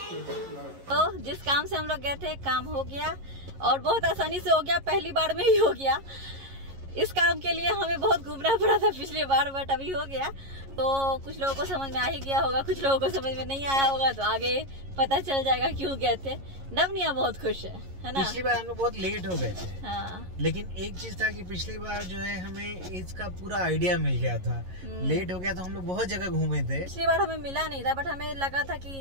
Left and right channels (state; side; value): late; left; 11 ms